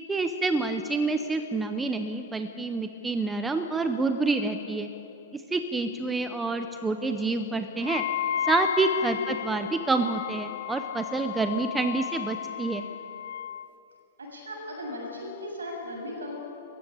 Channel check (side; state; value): both; normal; correlation 0.47